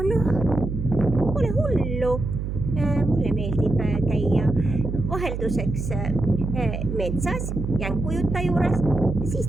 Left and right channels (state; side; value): noise; right; hum, 4 dB below the sound